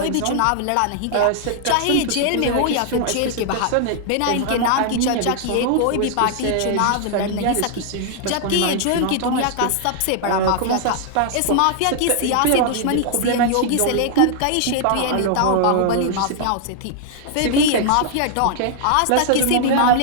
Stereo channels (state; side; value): different; both; correlation 0.00